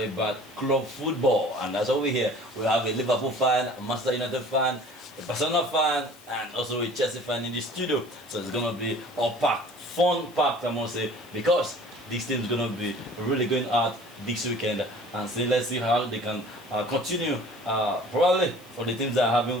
club football, and that's what we're here. We have a Liverpool fan, a Manchester United fan, a Barcelona fan, and also a Chelsea fan in the studio. So it's gonna be all packed, fun packed, I must say, because this team is gonna be really going out this weekend, and so let's see how they can continue. Probably for the teams that are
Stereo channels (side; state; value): left; noise; hiss, 24 dB below the sound